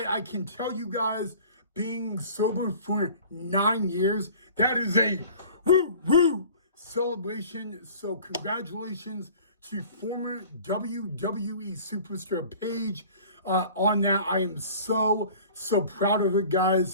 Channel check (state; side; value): inverted; both; correlation -0.45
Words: can tell you guys, being sober for 9 years, that is a woo celebration. So congratulations to former WWE superstar Paige on that. I am so proud of her,